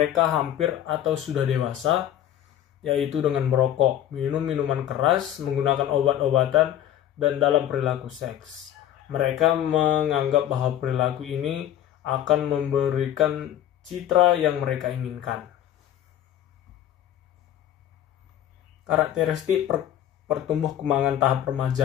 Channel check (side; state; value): right; quieter; 11.3 dB